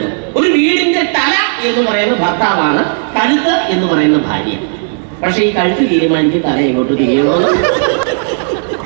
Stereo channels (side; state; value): left; silent; digital silence